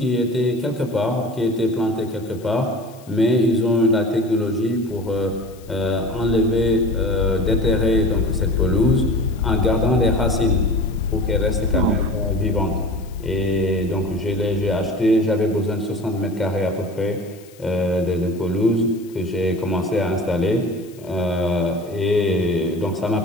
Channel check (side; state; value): left; noise; hiss, 25 dB below the sound